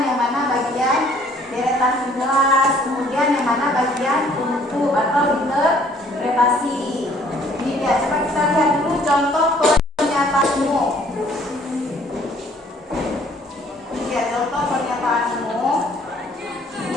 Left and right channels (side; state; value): both; normal; correlation 0.59